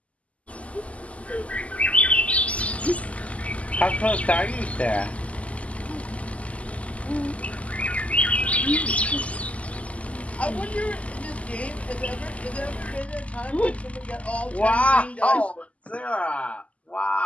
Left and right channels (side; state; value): right; late; 0.066 ms